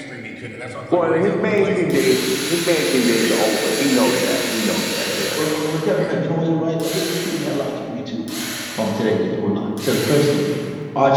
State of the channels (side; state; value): both; identical; correlation 1.00